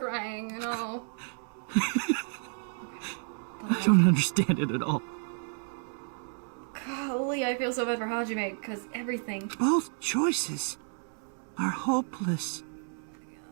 no. I don't understand it at all. Golly, I feel so bad for Hajime, because everything... Both choices are hopeless.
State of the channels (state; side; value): silent; left; 57 dB below the other